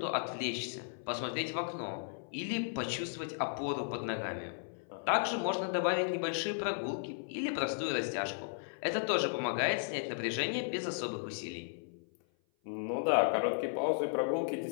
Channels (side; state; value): right; silent; 54 dB below the other